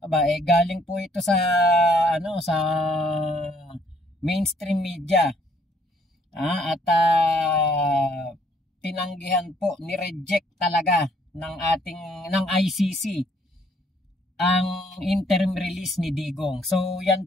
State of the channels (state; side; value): normal; both; correlation 0.65